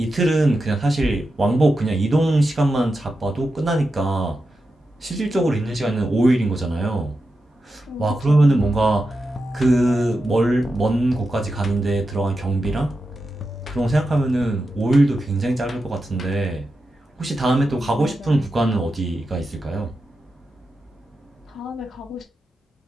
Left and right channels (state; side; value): normal; both; correlation 0.89